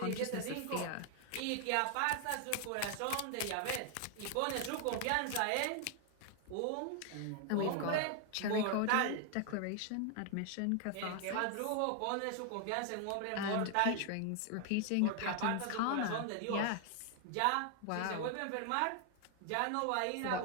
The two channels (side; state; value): both; different; correlation 0.00